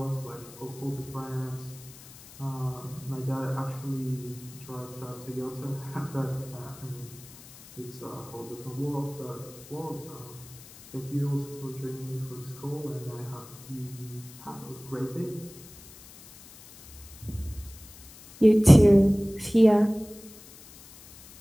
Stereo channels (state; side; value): noise; left; hiss, 19 dB below the sound